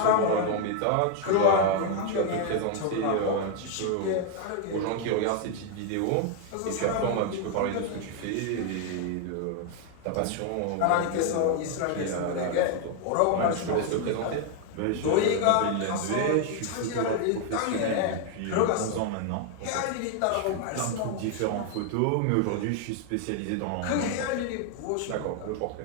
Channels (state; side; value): different; both; correlation 0.00